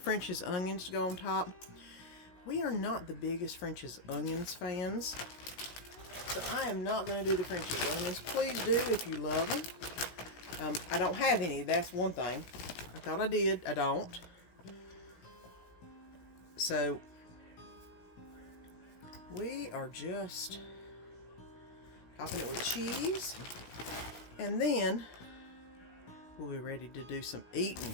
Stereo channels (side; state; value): right; late; 17 ms